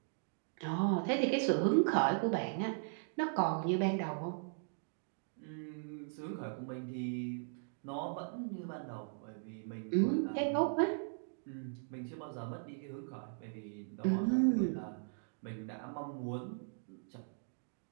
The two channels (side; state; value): left; silent; digital silence